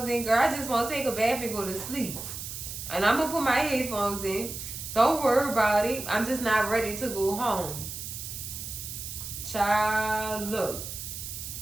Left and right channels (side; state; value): right; noise; hiss, 8 dB below the sound